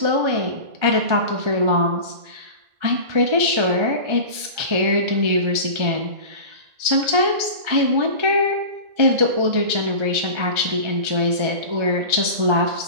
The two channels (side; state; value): left; late; 1.4 ms